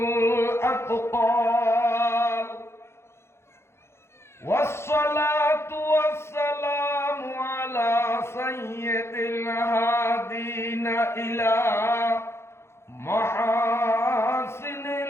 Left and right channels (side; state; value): right; late; 0.12 ms